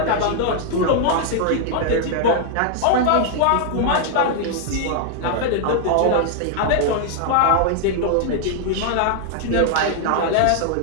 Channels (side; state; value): both; different; correlation 0.00